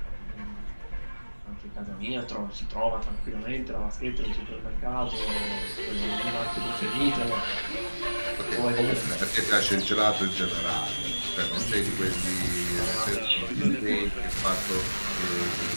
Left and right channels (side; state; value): both; inverted; correlation -1.00